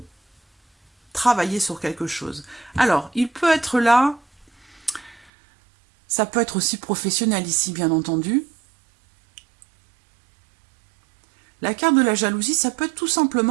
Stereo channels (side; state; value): left; drops out; at 5.3 s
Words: travailler sur quelque chose. Alors, il peut être là, ça peut être aussi professionnel ici, bien entendu. La carte de la jalousie, ça peut être tout